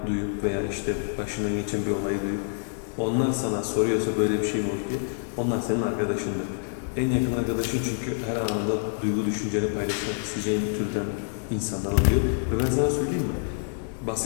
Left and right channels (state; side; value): silent; right; 59 dB below the other